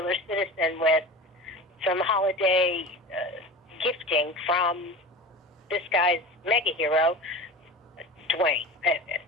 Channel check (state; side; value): normal; both; correlation 0.33